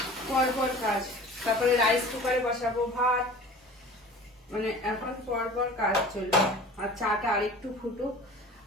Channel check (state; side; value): normal; both; correlation 0.42